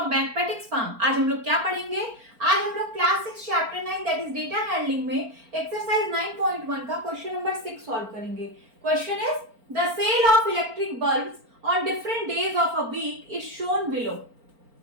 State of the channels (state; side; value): late; left; 4.4 ms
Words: mathematics farm. आज हम लोग क्या पढ़ेंगे? आज हम लोग class 6 chapter 9 that is data handling में एक्सरसाइज 9.1 का क्वेश्चन नंबर 6 सॉल्व करेंगे। Question is the sale of electric bulbs on different days of a week is shown below.